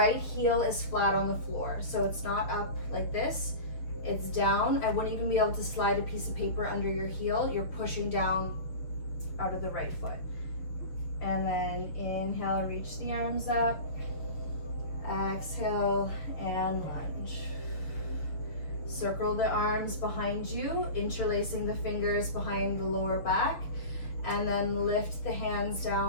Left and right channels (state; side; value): late; right; 6.3 ms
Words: heel is flat on the floor. So it's not up like this, it's down. I wouldn't even be able to slide a piece of paper under your heel. You're pushing down out of the right foot. And then inhale, reach the arms up. Exhale and lunge. Circle the arms behind you, interlacing the fingers behind the lower back, and then lift the hands